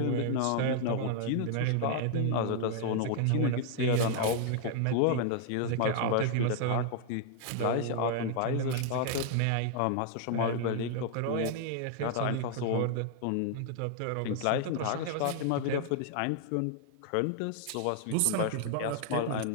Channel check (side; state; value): both; different; correlation 0.00